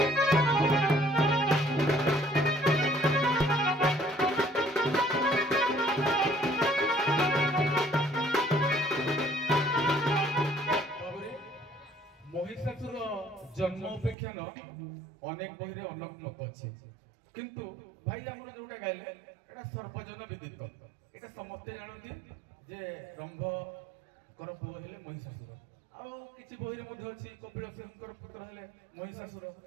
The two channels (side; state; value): left; drops out; at 14.2 s